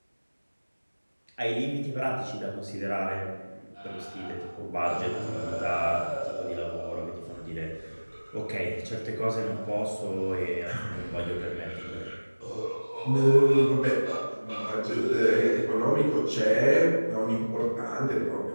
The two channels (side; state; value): both; inverted; correlation -1.00